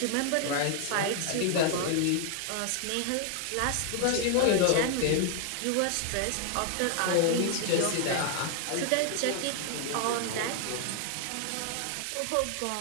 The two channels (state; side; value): different; both; correlation 0.00